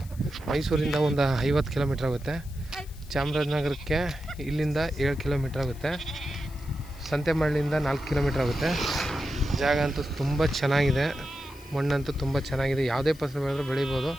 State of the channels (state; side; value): noise; left; hiss, 22 dB below the sound